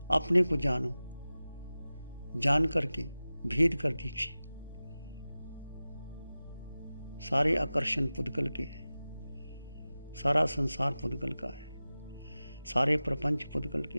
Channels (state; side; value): inverted; both; correlation -0.96